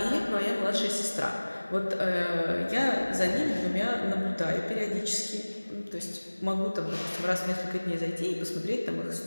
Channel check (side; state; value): both; inverted; correlation -1.00